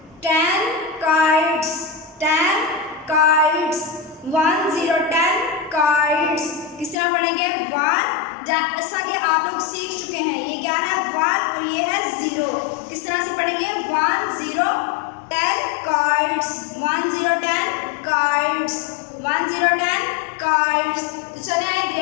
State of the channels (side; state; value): right; drops out; at 7.0 s